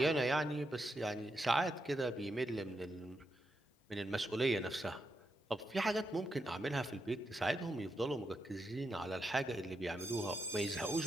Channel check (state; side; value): normal; both; correlation 0.84